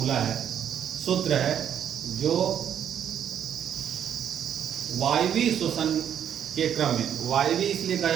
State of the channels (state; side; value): quieter; left; 9.3 dB